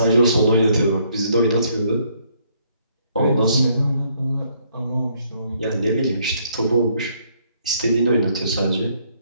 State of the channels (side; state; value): both; inverted; correlation -0.68